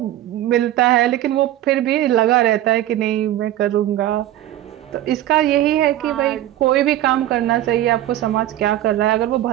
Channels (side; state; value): left; quieter; 13.5 dB